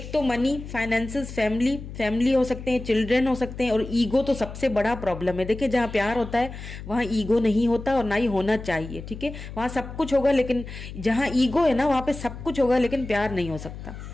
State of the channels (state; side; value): noise; left; hum, 11 dB below the sound